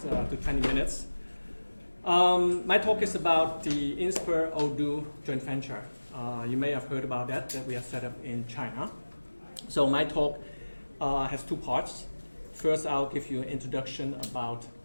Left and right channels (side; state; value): both; inverted; correlation -1.00